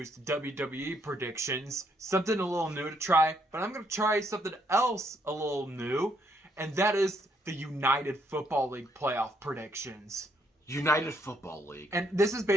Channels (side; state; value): both; normal; correlation 0.72